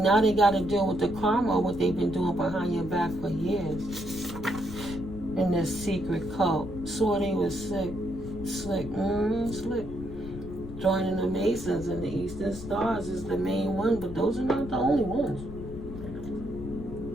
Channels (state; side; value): noise; left; rumble, 10 dB below the sound